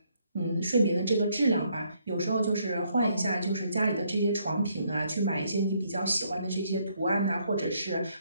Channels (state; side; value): inverted; both; correlation -0.71